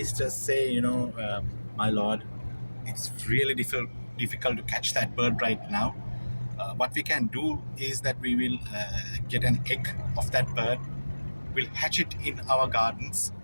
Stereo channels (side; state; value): both; inverted; correlation -1.00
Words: say, "My lord, it's really difficult to catch that bird right now. What we can do is that we will get an egg of that bird, we'll hatch it in our gardens,